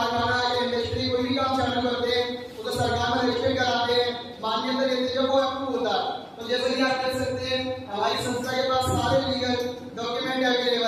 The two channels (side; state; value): both; identical; correlation 1.00